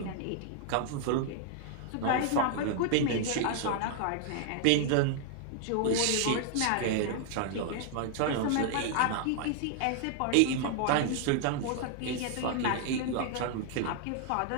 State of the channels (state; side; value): different; both; correlation 0.00